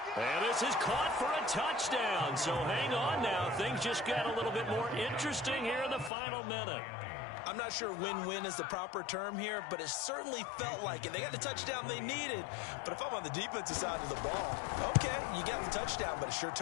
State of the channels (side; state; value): right; drops out; at 6.1 s